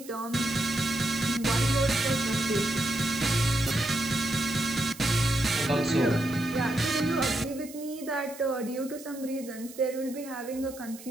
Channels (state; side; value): noise; right; hiss, 17 dB below the sound